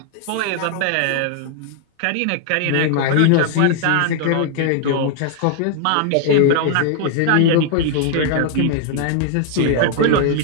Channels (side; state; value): both; different; correlation 0.00